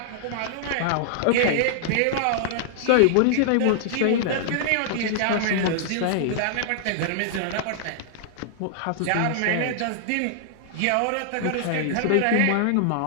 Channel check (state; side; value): different; both; correlation -0.01